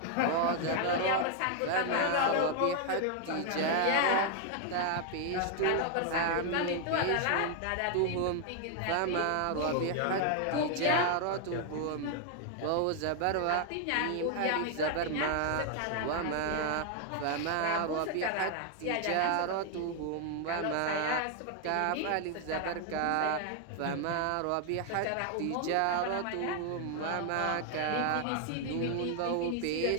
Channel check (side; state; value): both; different; correlation 0.00